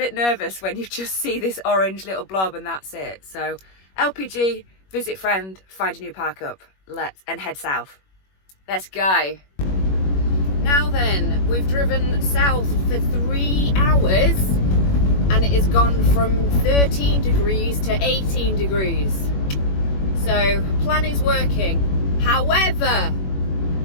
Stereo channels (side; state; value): right; late; 21 ms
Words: nervous when you just see this orange little blob and that's it. So LPG, visit friend, find a new park up, and head south. Let's go. Now then, we've driven south for 3 hours and it has gone from 13 degrees to 18 degrees. So plan is working. However,